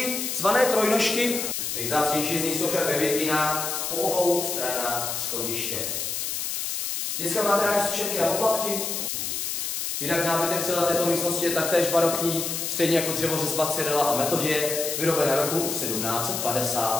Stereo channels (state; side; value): noise; left; hiss, 2 dB below the sound